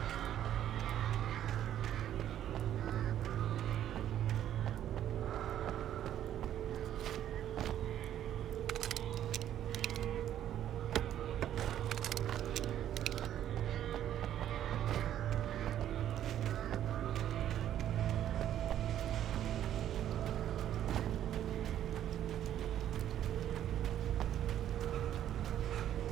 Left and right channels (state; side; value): quieter; left; 11.1 dB